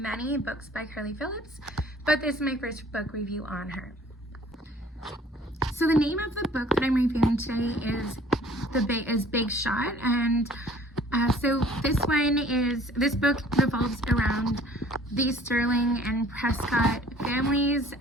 books by Carly Phillips, but this is my first book review on her. So the name of the book that I'm reviewing today is Big Shot, and so this book revolves around the Sterling and Prescott families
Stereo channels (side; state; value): both; normal; correlation 0.53